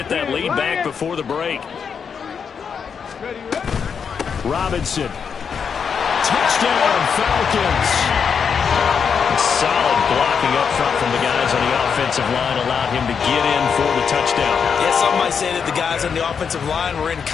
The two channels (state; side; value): quieter; right; 6.6 dB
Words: that lead back before the break. Robinson. Touchdown, Falcons. Solid blocking up front from the guys on the offensive line allowed him to get in for the touchdown. Yeah, some might say that the guys on the offensive line were in